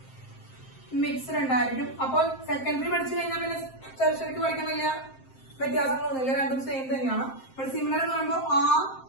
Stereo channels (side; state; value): right; late; 7.6 ms